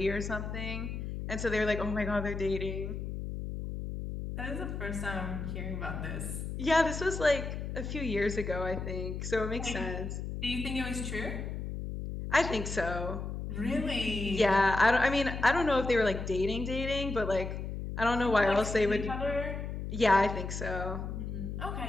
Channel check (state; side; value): noise; left; hum, 5 dB below the sound